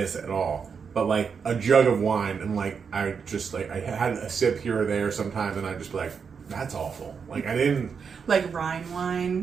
at all, but like a jug of wine, and like I had a sip here or there sometimes, and I'd just be like, that's awful. Like I didn't like Rhine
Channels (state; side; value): quieter; left; 6.2 dB